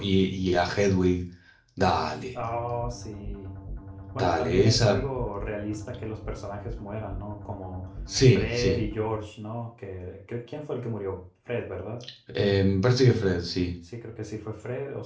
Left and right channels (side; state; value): both; identical; correlation 1.00